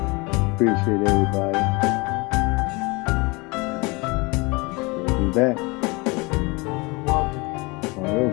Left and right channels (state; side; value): quieter; right; 26.6 dB